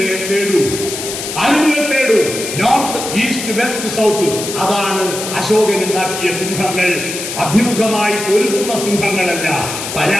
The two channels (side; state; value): left; noise; hiss, 6 dB below the sound